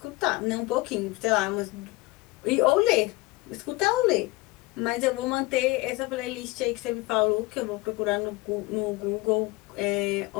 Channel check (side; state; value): right; quieter; 22.0 dB